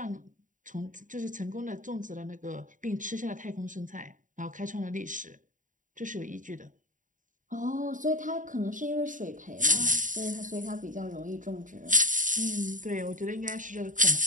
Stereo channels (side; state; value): left; late; 0.38 ms